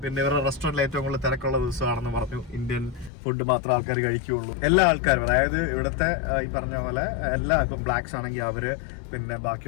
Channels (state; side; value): drops out; right; at 3.1 s